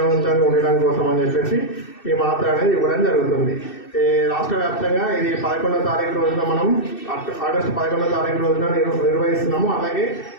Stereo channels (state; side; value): late; right; 2.6 ms